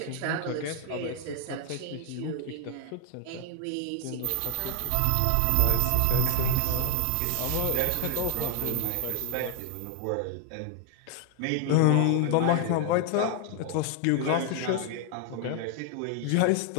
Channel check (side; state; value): both; different; correlation 0.00